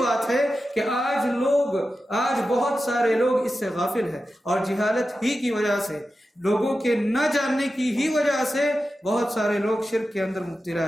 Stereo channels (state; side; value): normal; both; correlation 0.92